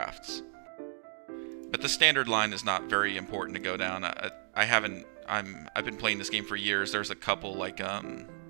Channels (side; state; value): left; silent; digital silence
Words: But the standard line is not very important to go down. I've been playing this game for years. There's a couple like I